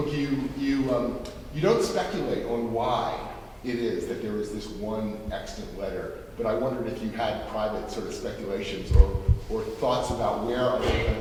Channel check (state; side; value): identical; both; correlation 1.00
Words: you don't speculate on why it is that there is this one extant letter, but I wondered if you had private sort of speculations or thoughts about where other